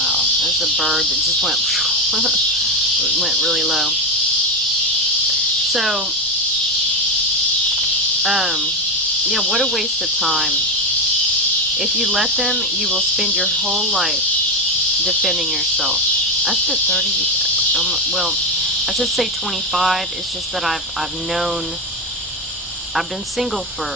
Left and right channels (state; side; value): normal; both; correlation 0.12